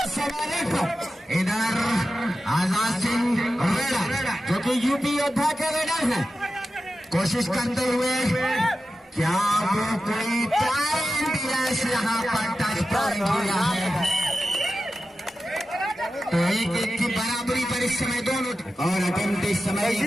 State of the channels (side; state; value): both; normal; correlation 0.92